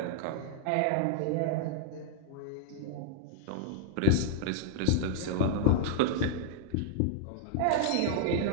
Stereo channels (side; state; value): both; different; correlation -0.01